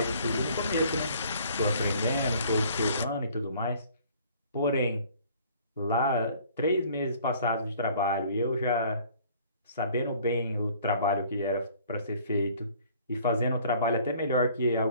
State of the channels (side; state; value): both; inverted; correlation -0.55